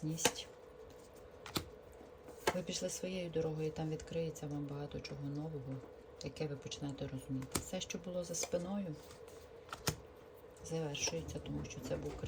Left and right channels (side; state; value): both; identical; correlation 1.00